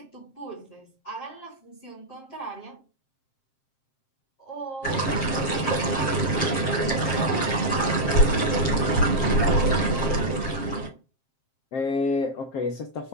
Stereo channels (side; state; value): right; late; 7.5 ms